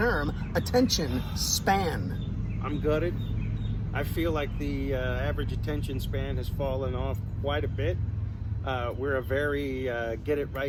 attention span? I'm gutted. I feel like the average attention span has fallen off quite a bit. We're a very get it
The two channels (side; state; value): both; identical; correlation 1.00